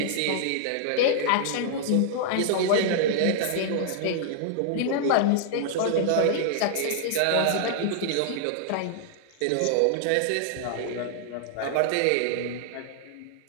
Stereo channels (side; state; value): both; different; correlation -0.01